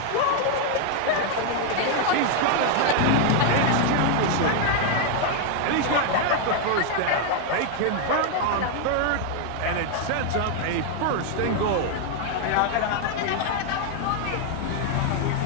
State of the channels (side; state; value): both; different; correlation 0.00